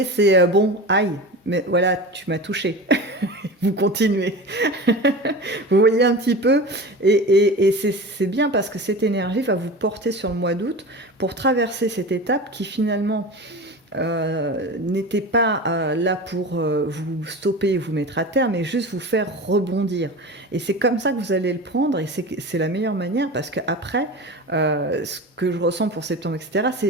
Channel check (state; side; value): normal; both; correlation 0.31